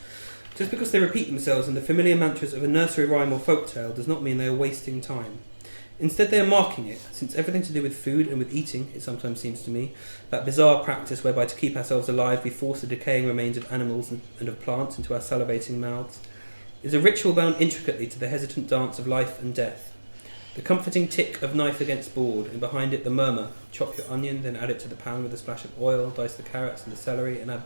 Just because they repeat themselves in the familiar mantras of a nursery rhyme or folktale does not mean they are wasting time. Instead they are marking it, since everything to do with food and with eating, it sometimes seems to me, that bizarre practice whereby to keep ourselves alive we force the decaying remains of animals and of plants into our salivating mouths, is a ritual bound intricately to the hesitant dance of life and death. The comforting tick of knife against board, and behind it the murmur, chop your onion, then add it to the pan with a splash of oil, dice the carrots and the celery and add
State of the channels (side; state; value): both; inverted; correlation -1.00